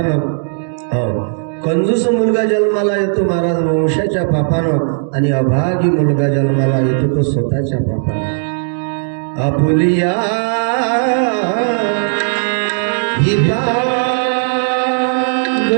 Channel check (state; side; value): silent; left; digital silence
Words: कंजूस मुलगा जन्माला येतो महाराज वंशाच्या पापानं, आणि अभागी मुलगा जन्माला येतो तो स्वतःच्या पापानं. आपुलिया हिता